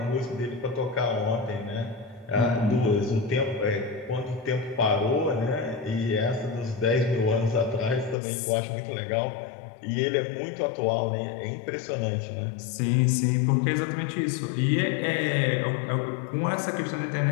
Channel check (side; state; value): right; drops out; at 8.2 s